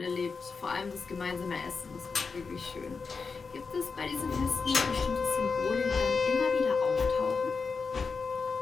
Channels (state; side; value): quieter; right; 4.9 dB